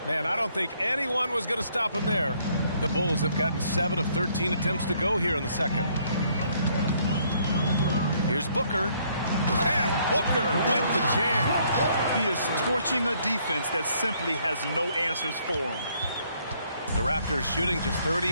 Man, I don't think anyone was going to stop him there. The Bulls have gotten 7 of 13 attempts to go here in the second. Here's Booker. And Booker with the jam. He is torching a defense that simply has no answers for him. The Raptors shooting just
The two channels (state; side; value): inverted; both; correlation -0.67